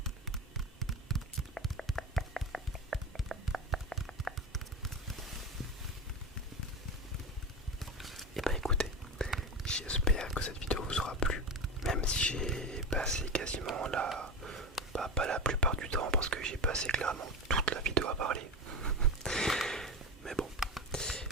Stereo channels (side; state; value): both; normal; correlation 0.23